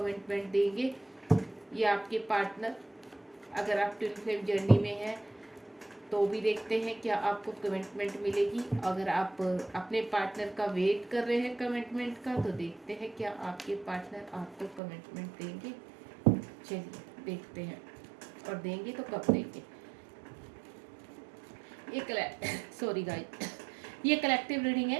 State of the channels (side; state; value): left; drops out; at 14.8 s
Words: देंगे, या आपके पार्टनर। अगर आप ट्विन फ्लेम जर्नी में हैं तो भी देखते हैं क्या आपको कमिटमेंट मिलेगी। अगर आप अपने पार्टनर का वेट कर रहे हैं कमिटमेंट का, तो देखते हैं क्या आपके पार्टनर आपको कमिटमेंट देंगे। चलिए देखते हैं, और देंगे तो कब देंगे। ये सॉरी गाइस, ये कलेक्टिव रीडिंग